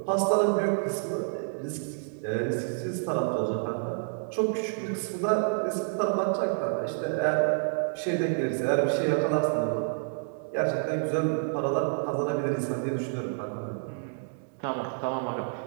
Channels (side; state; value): left; silent; digital silence